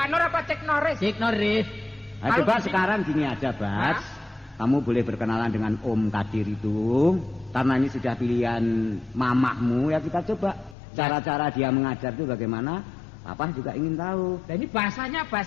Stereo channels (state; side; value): drops out; right; at 10.8 s